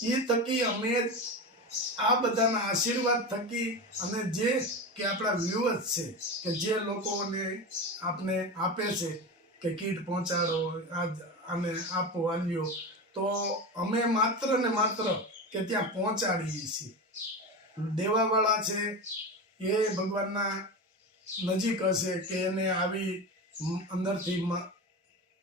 એ થકી અમે આ બધાના આશીર્વાદ થકી અને જે કે આપણા વ્યુઅર્સ છે કે જે લોકોને આપને આપે છે કે કીટ પહોંચાડો, આને આપો આલ્યો, તો અમે માત્ર ને માત્ર કે ત્યાં પહોંચાડીએ છીએ. દેવાવાળા છે એ ભગવાનના નજીક હશે કે એને આવી અંદરથી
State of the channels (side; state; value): both; normal; correlation 0.23